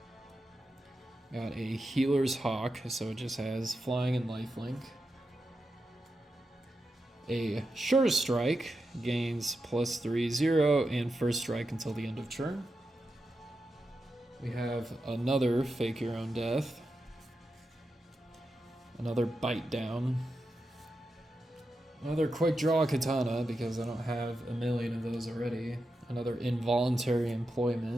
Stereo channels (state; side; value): normal; both; correlation 0.89